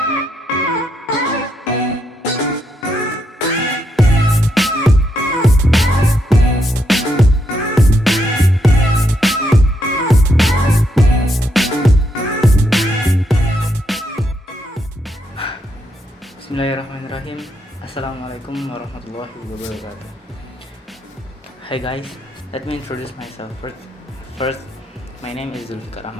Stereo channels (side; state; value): both; normal; correlation 0.79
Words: Assalamualaikum warahmatullahi wabarakatuh. Hi guys, let me introduce myself first. My name is Dzulfikar